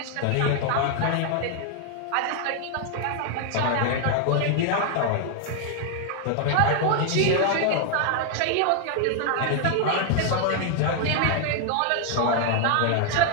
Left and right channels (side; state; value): both; different; correlation 0.00